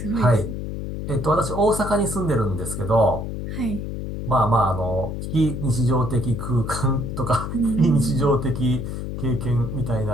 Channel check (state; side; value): noise; left; hum, 5 dB below the sound